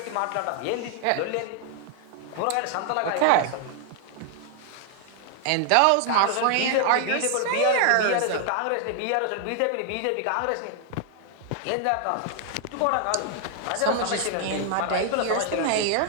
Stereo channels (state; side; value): different; both; correlation 0.00